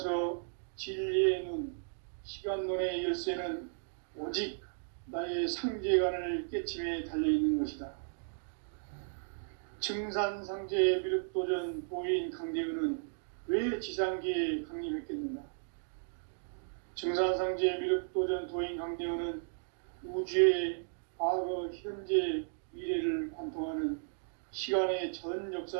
진리의 눈, 시간론의 열쇠는 오직 나의 상제관을 깨침에 달려있는 것이다. 증산상제 미륵도전 도인 강대훈은 왜 지상계에 강림했겠는가? 증산상제 미륵도전 도인 강대훈은 우주의 과거, 현재, 미래를 관통하는 시간의 전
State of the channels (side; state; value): left; silent; digital silence